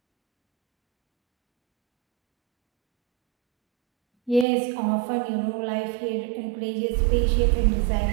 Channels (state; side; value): drops out; left; at 4.5 s